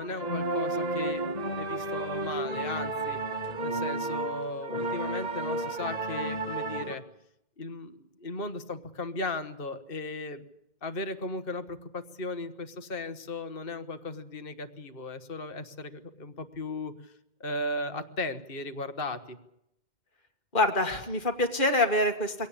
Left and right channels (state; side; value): late; right; 2.1 ms